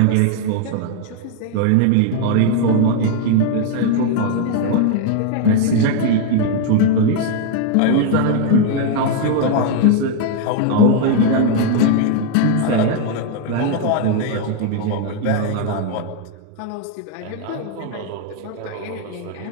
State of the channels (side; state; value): both; different; correlation 0.00